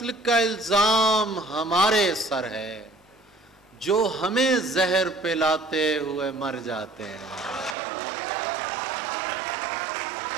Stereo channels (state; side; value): drops out; left; at 7.8 s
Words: का इल्ज़ाम हमारे सर है, जो हमें जहर पिलाते हुए मर जाते हैं।